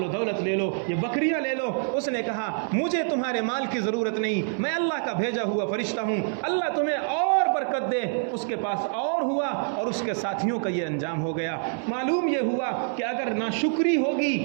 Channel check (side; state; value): left; silent; 61 dB below the other